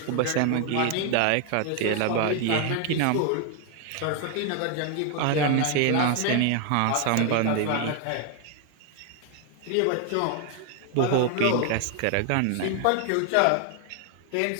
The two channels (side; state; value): both; different; correlation 0.00